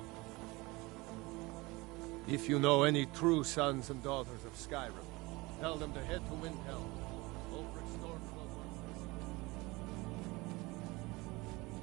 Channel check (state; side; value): quieter; left; 23.0 dB